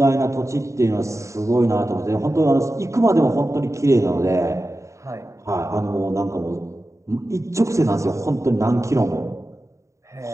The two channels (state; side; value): late; left; 0.15 ms